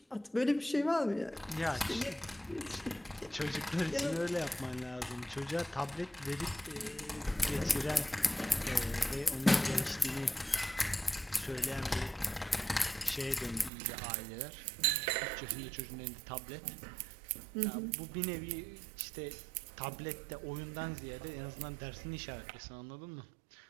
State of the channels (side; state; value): left; drops out; at 13.7 s